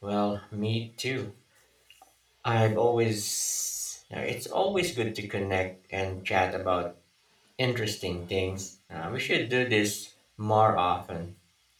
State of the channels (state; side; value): identical; both; correlation 1.00